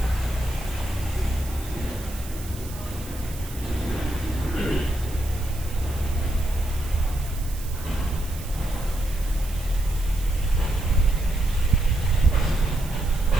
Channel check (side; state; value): right; noise; hiss, 15 dB below the sound